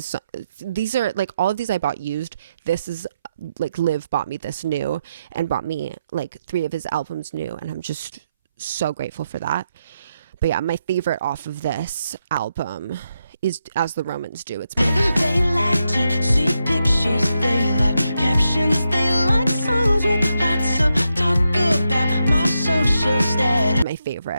These are, like, all of these I bought used. This is, like, Liv bought me this new, and bought me, like, 3 of his albums new, and I'm just so grateful for that. But yeah, my favorite off of this album is As the Romans Do. It's They like to see pictures, they like captions, they like songs with lots of talk about my social status. my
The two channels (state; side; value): inverted; both; correlation -0.84